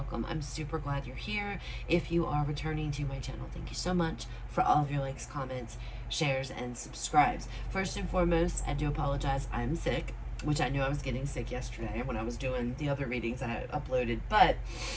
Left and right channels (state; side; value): identical; both; correlation 1.00